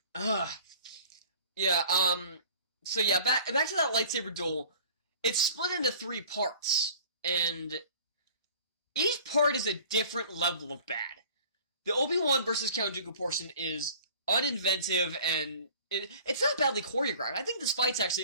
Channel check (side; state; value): both; inverted; correlation -0.47